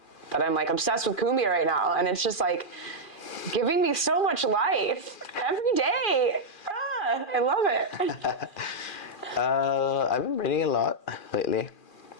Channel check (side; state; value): right; late; 2.4 ms